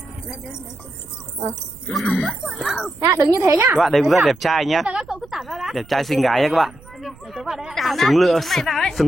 Đứng như thế nhá. Các bạn đây cũng rất đẹp trai nhá. Các cậu cứ tản ra đã. Đẹp trai xinh gái nhá các bạn. Để tớ vào đây. Xứng lựa,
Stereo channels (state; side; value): noise; right; rumble, 23 dB below the sound